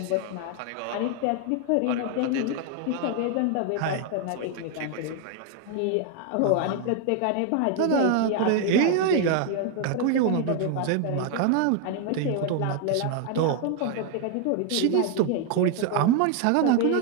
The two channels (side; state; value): both; different; correlation 0.01